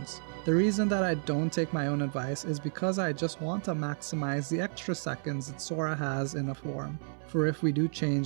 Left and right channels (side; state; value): left; silent; 57 dB below the other